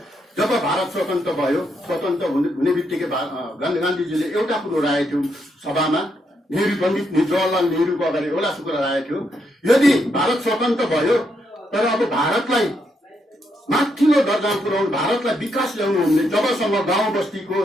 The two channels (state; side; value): normal; both; correlation 0.78